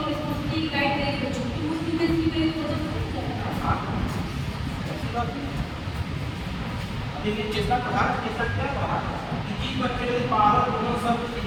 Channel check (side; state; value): both; identical; correlation 1.00